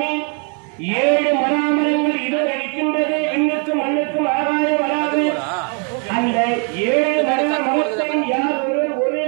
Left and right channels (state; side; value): quieter; left; 39.1 dB